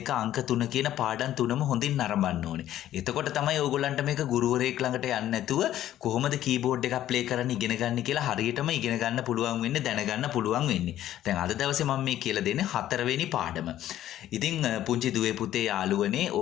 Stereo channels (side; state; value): right; quieter; 12.6 dB